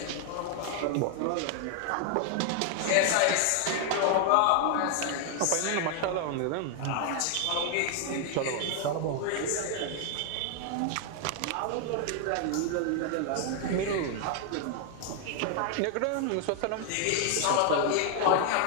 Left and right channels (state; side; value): different; both; correlation 0.00